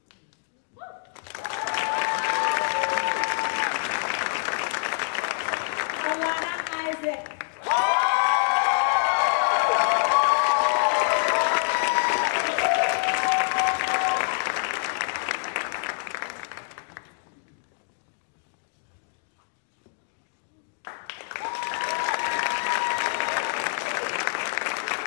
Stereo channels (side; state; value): right; silent; digital silence